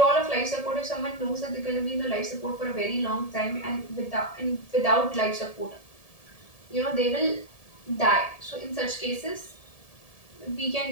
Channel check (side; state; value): right; late; 1.7 ms